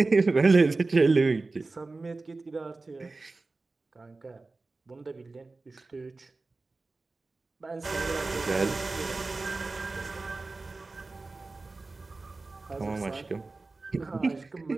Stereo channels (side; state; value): left; quieter; 3.5 dB